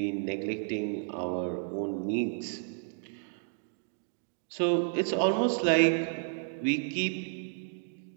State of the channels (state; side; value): silent; left; 57 dB below the other